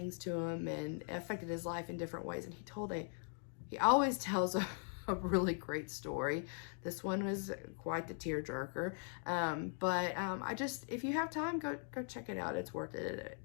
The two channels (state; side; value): silent; right; 51 dB below the other